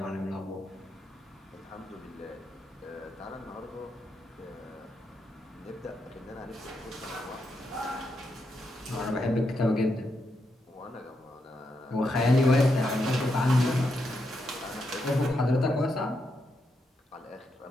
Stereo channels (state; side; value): normal; both; correlation 0.82